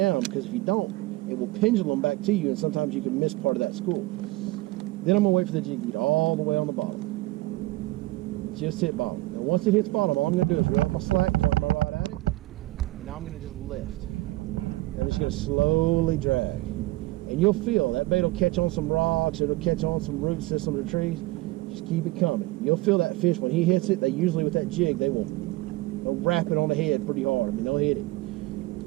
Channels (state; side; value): quieter; left; 19.5 dB